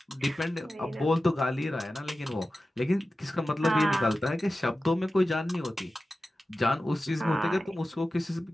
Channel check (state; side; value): normal; both; correlation 0.94